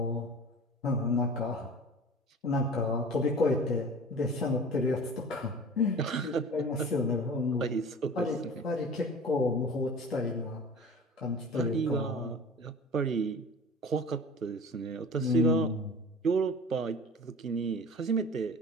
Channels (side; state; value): both; normal; correlation 0.40